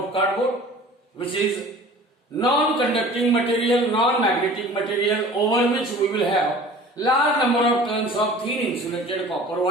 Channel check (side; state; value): both; normal; correlation 0.44